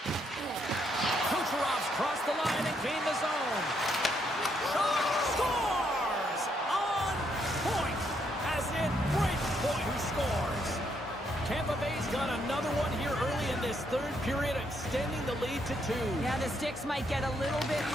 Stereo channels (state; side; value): normal; both; correlation 0.75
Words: Kucherov's crossed the line and gained the zone. Scores! On point! As in Breakpoint who scores. Tampa Bay's got another one here early in this 3rd period, extending the lead to 2. Yeah, the sticks might get a little bit